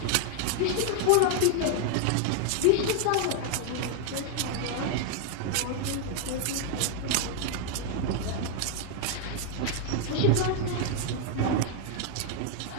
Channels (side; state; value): both; different; correlation 0.00